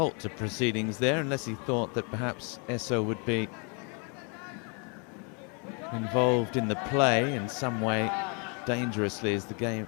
to proceedings there unless he thought that perhaps Esso would be involved in the play in some way dangerously as the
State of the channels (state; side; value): quieter; right; 35.7 dB